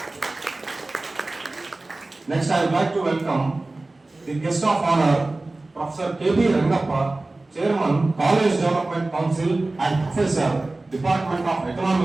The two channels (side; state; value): left; quieter; 3.0 dB